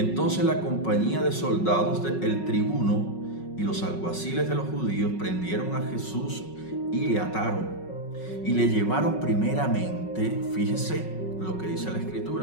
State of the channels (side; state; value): right; late; 5.4 ms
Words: la compañía de soldados del tribuno y los alguaciles de los judíos prendieron a Jesús y le ataron y le llevaron primeramente, fíjese lo que dice la